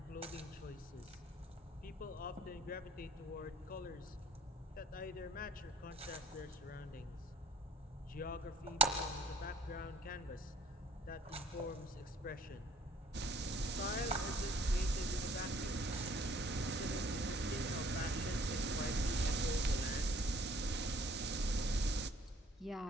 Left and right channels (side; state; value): both; normal; correlation 0.56